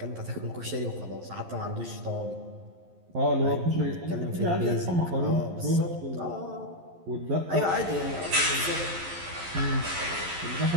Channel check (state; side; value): late; left; 11 ms